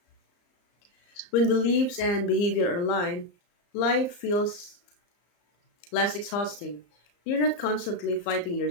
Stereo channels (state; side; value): late; right; 35 ms